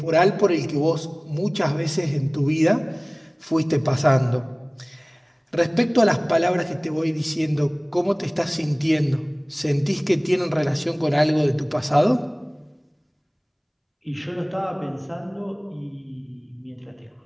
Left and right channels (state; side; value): identical; both; correlation 1.00